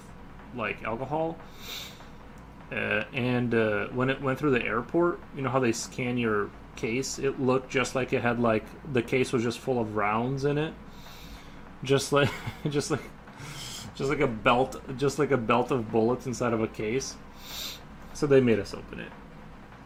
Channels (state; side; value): identical; both; correlation 1.00